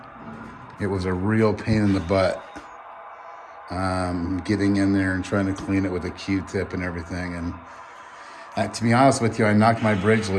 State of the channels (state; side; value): identical; both; correlation 1.00